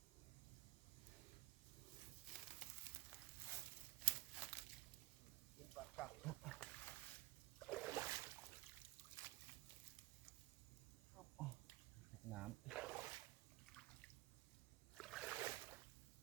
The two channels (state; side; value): quieter; left; 17.4 dB